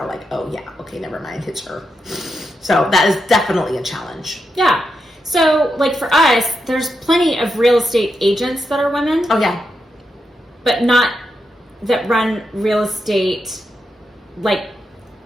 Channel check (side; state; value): both; normal; correlation 0.85